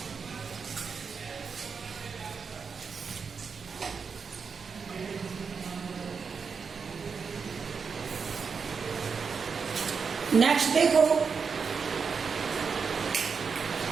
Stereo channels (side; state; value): left; quieter; 5.6 dB